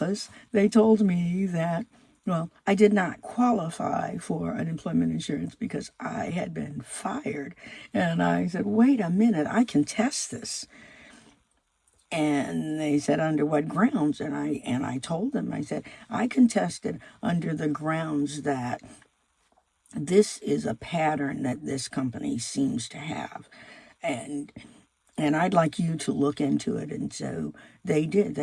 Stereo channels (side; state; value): both; identical; correlation 1.00